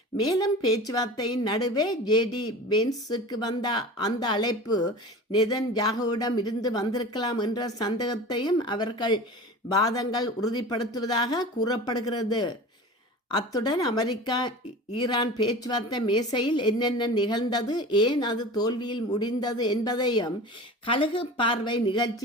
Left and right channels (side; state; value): both; normal; correlation 0.35